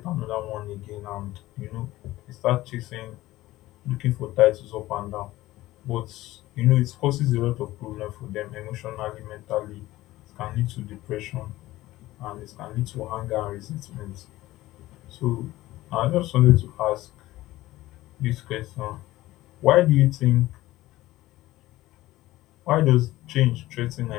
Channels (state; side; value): quieter; right; 16.8 dB